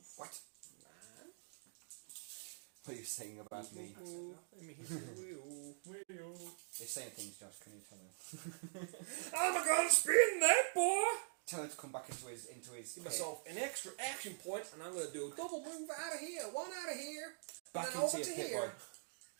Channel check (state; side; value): silent; left; digital silence